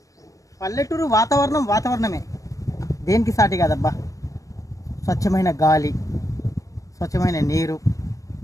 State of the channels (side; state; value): right; late; 0.16 ms